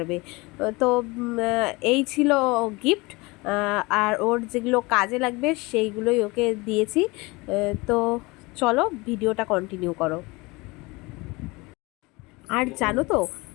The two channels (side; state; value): right; quieter; 24.3 dB